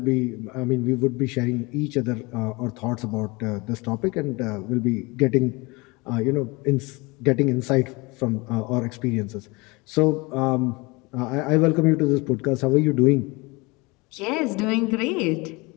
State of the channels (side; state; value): right; quieter; 25.6 dB